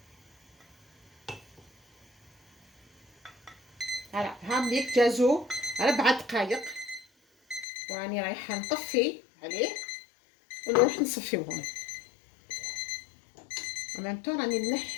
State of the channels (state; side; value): drops out; right; at 7.7 s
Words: هلا هامليك جازو 4 دقائق، وراني رايحه نطفي عليه ونروح نصفيوهم. ومامتو راني